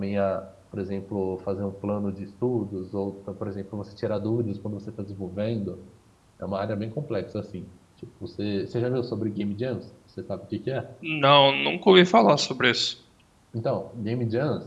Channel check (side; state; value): both; identical; correlation 1.00